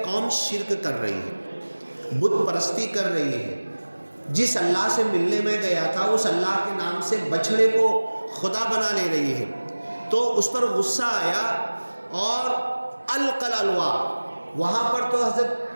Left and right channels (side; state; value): both; inverted; correlation -1.00